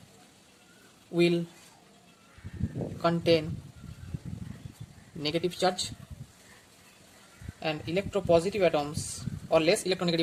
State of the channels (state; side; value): identical; both; correlation 1.00